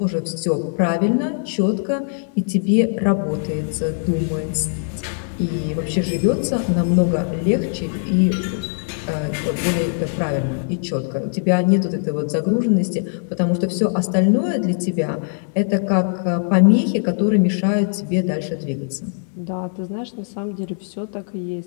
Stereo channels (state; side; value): silent; right; 59 dB below the other